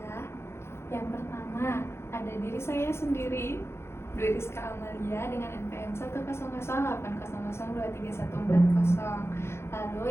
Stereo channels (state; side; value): late; right; 0.12 ms